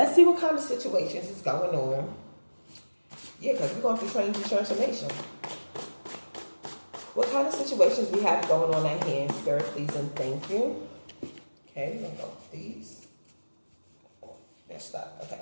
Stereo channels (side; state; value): both; inverted; correlation -1.00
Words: see what kind of situations is going on. Yeah, because we're going through change and transformation. What kind of situations we have going on at hand, Spirit, please and thank you. Okay, we're going to go with these. They're stuck.